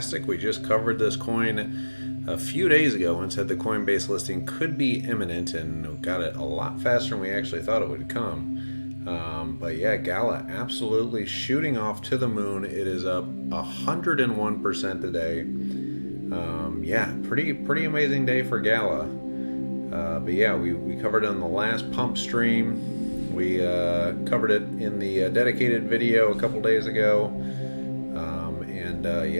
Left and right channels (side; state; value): both; inverted; correlation -1.00